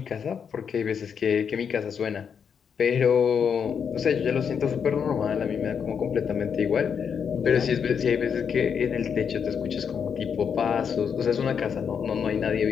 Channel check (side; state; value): right; quieter; 7.0 dB